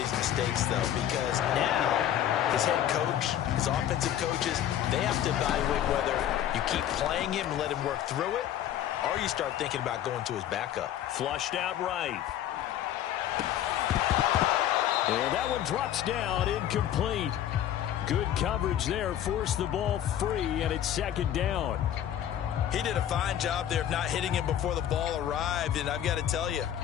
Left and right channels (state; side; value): quieter; right; 11.0 dB